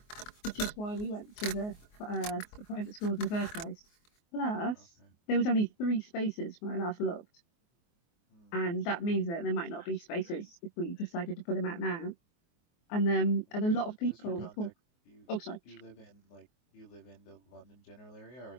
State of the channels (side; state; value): right; late; 24 ms